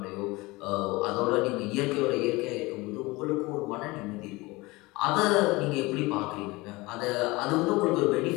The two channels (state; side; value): quieter; right; 22.4 dB